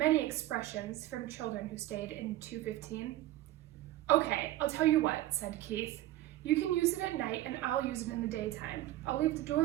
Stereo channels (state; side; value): quieter; left; 14.8 dB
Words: expressions from children who stayed in 215. "Okay, I'll tell you what," said Keith. "You can use it at night and I'll use it in the daytime. I'll leave the